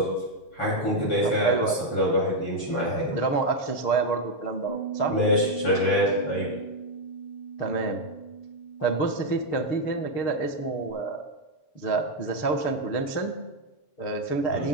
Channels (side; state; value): right; late; 7.2 ms